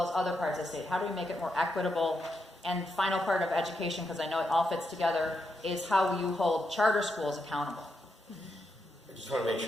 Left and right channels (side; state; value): both; normal; correlation 0.83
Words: as other parts of the state? How do we make it more equitable? And final part of education, because I know it all fits together, is how you hold charter schools accountable. I just want to make